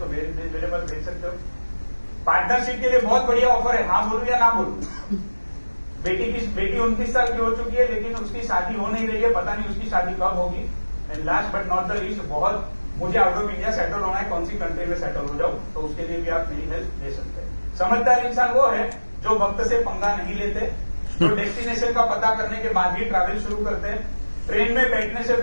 मेरे पास भेज सकते हो। पार्टनरशिप के लिए बहुत बढ़िया ऑफर है, हाँ बोलूं या ना बोलूं। बेटी 29 साल की हो चुकी है लेकिन उसकी शादी हो नहीं रही है, पता नहीं उसकी शादी कब होगी। And last but not the least, बहुत मुझे आउट ऑफ इंडिया सेटल होना है, कौन सी कंट्री में सेटल हो जाऊं, तो उसके लिए भी आप मेरी हेल्प ले सकते हैं। समझदार इंसान वो है जो वक्त से पंगा नहीं लेते, जो डेस्टिनेशन का पता करने के बाद ही ट्रैवल शुरू करते हैं, ट्रेन में बैठने से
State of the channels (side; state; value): both; inverted; correlation -1.00